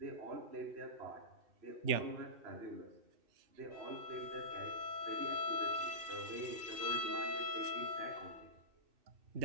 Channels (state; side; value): late; left; 2.6 ms